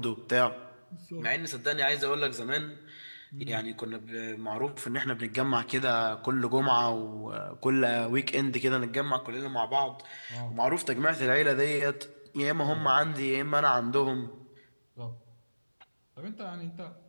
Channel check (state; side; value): inverted; both; correlation -1.00